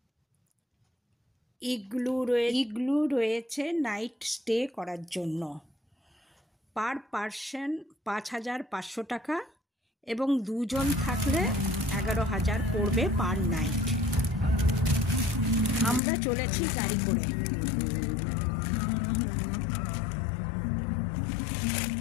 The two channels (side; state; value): right; drops out; at 16.0 s